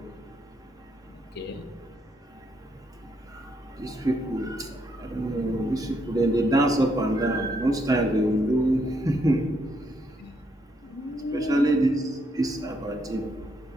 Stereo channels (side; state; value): both; normal; correlation 0.75